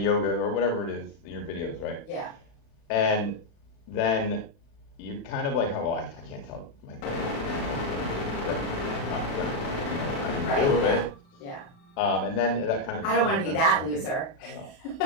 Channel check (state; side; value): late; right; 36 ms